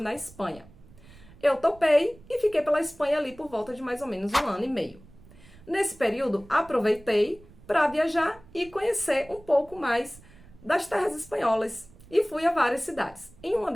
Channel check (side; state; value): right; noise; rumble, 23 dB below the sound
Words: Espanha. Eu topei e fiquei pela Espanha ali por volta de mais ou menos 1 ano e meio. Nesse período, aproveitei para viajar e conhecer um pouco mais das terras espanholas e fui a várias cidades. Em uma